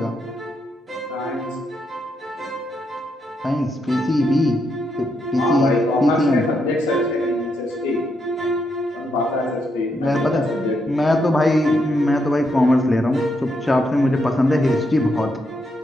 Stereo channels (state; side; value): normal; both; correlation 0.80